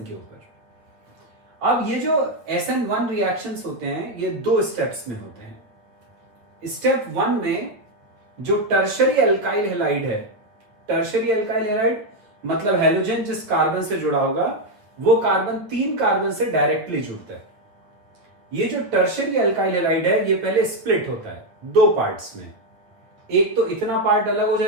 के ऊपर। अब ये जो SN1 रिएक्शंस होते हैं ये दो स्टेप्स में होते हैं। स्टेप 1 में जो टर्शरी एल्काइल हैलाइड है, टर्शरी एल्काइल हैलाइड मतलब हैलोजन जिस कार्बन से जुड़ा होगा वो कार्बन 3 कार्बन से डायरेक्टली जुड़ता है। ये जो टर्शरी एल्काइल हैलाइड है ये पहले स्प्लिट होता है दो पार्ट्स में। एक तो इतना पार्ट अलग हो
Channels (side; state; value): left; late; 8.6 ms